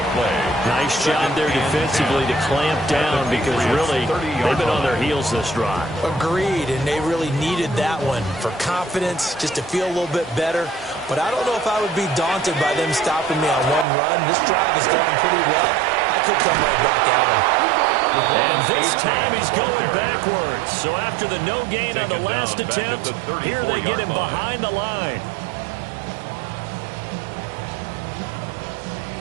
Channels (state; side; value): drops out; left; at 13.9 s